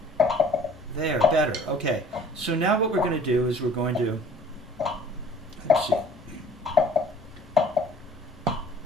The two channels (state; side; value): normal; both; correlation 0.50